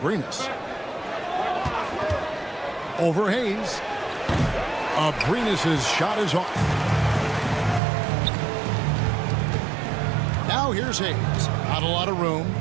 Over Hayes. Abrinas' shot is off. Now here's Hayes. Not a lot of room.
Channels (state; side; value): drops out; left; at 7.8 s